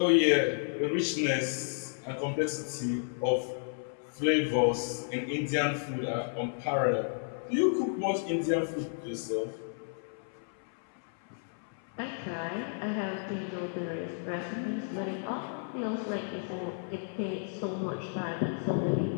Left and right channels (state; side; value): silent; right; 56 dB below the other